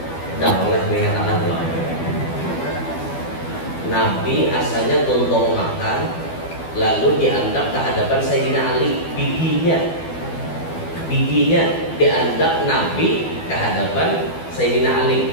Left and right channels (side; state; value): right; late; 12 ms